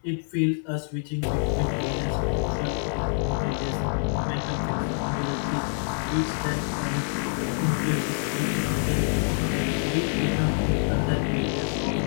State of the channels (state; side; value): silent; right; digital silence